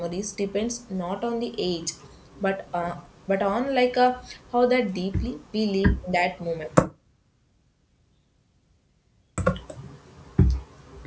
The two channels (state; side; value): identical; both; correlation 1.00